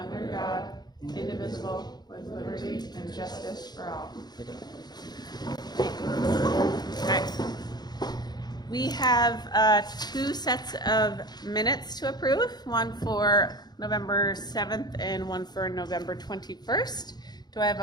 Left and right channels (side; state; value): right; late; 0.20 ms